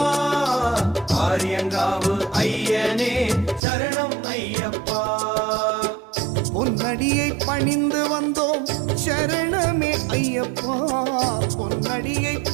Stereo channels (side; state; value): left; drops out; at 3.6 s